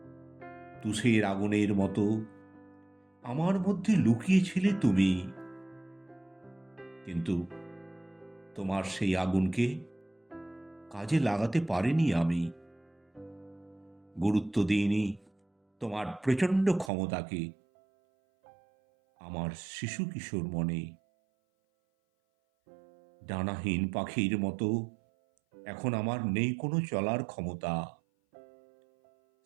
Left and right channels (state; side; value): drops out; left; at 16.9 s